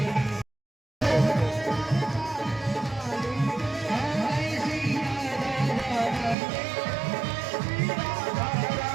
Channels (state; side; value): drops out; left; at 6.4 s